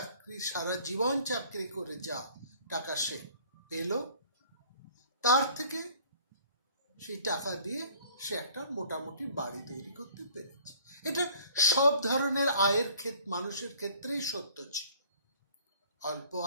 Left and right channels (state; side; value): inverted; both; correlation -0.53